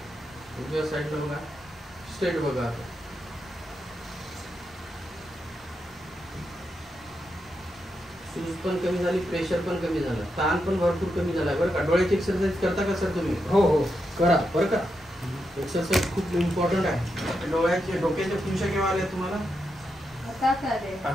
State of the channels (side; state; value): both; normal; correlation 0.85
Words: उजव्या साईडला बघा, स्ट्रेट बघा. आता सूज पण कमी झाली, प्रेशर पण कमी झालं, ताण पण भरपूर कमी झाला बरं का. डोळ्याची एक्सरसाइज करता का सर तुम्ही? हो करा बरं का. एक्सरसाइज खूप इम्पॉर्टंट आहे. डोक्याच्या खुशा केव्हा आल्या तुम्हाला?